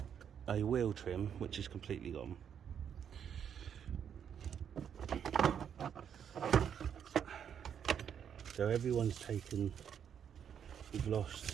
a wheel trim which is completely gone. So everyone's taken, we've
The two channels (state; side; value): quieter; left; 8.3 dB